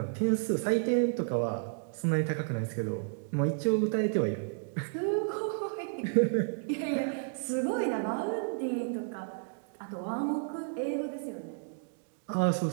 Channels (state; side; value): silent; left; digital silence